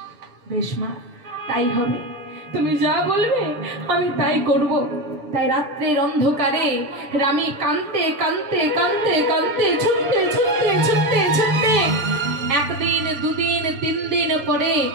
বেশ মা, তাই হবে, তুমি যা বলবে আমি তাই করব। তাই রাত্রের অন্ধকারে রামী কাঁদতে ছুটতে একদিন দুদিন 3 দিন পরে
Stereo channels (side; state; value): left; late; 7.0 ms